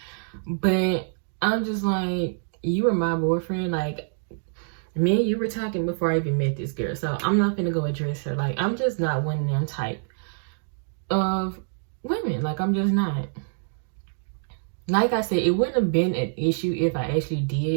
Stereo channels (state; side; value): silent; left; digital silence